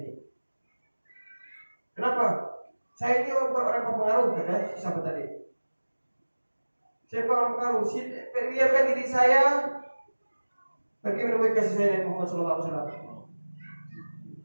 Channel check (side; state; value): both; inverted; correlation -1.00